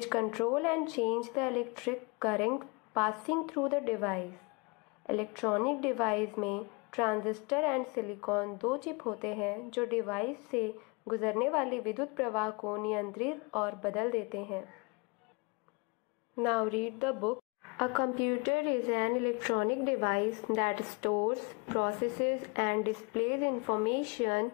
control and change the electric current passing through the device. Electronic device में transistor and silicon दो chip होते हैं जो device से गुजरने वाले विद्युत प्रवाह को नियंत्रित और बदल देते हैं. Now read the book. A computer is an electronic device that stores, processes and displays information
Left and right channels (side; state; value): right; quieter; 30.3 dB